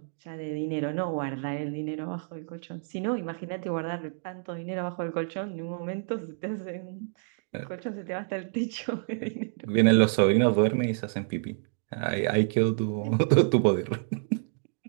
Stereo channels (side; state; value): left; silent; digital silence